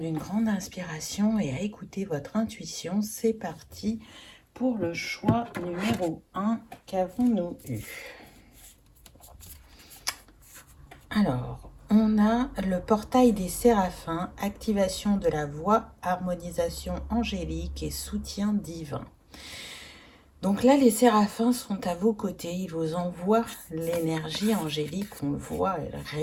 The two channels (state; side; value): identical; both; correlation 1.00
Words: une grande inspiration et à écouter votre intuition. C'est parti pour le choix numéro 1. Qu'avons-nous eu? Alors, on a le portail des séraphins, activation de la voix, harmonisation angélique et soutien divin. Donc là, les séraphins sont à vos côtés, ils vous envoient l'énergie angélique, on le voit, elle